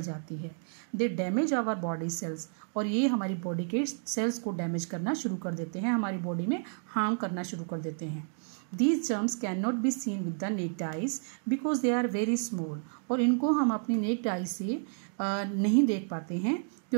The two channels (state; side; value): silent; left; 57 dB below the other